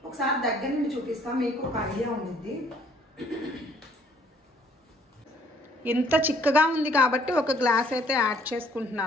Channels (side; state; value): both; normal; correlation 0.62